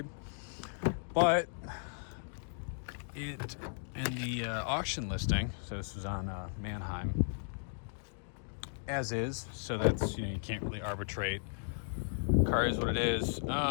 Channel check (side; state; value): right; silent; digital silence